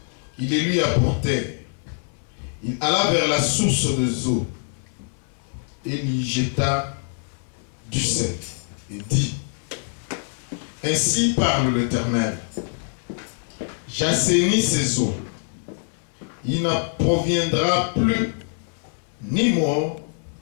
Ils les lui apportèrent. Il alla vers la source de eau et lui jeta du sel et dit: ainsi parle l'Éternel, j'assainis ces eaux. Il n'en proviendra plus ni mort,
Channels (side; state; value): right; silent; 57 dB below the other